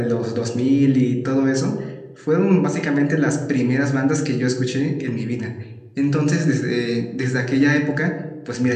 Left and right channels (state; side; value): identical; both; correlation 1.00